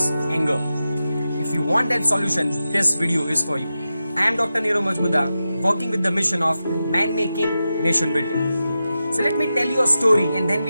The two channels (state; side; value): inverted; both; correlation -0.91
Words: anger. If you want that solution, this video is for you. I am Dr. Nirav Majmudar, working with the mission of man making, nation building. So let me tell you a story and then